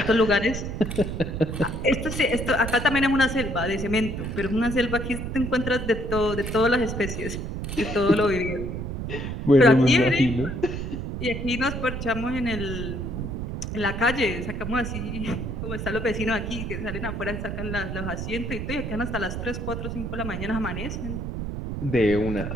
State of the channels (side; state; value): right; noise; rumble, 5 dB below the sound